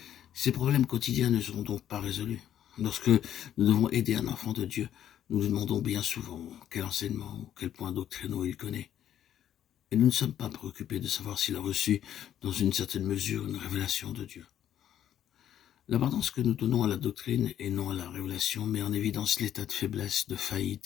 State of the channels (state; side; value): quieter; right; 10.7 dB